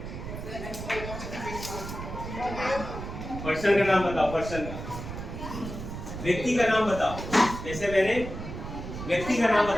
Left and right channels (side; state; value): right; noise; rumble, 8 dB below the sound